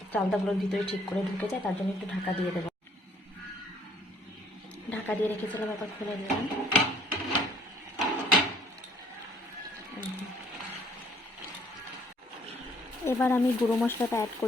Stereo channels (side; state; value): both; normal; correlation 0.61